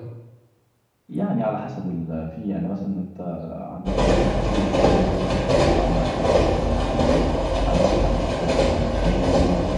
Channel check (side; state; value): both; identical; correlation 1.00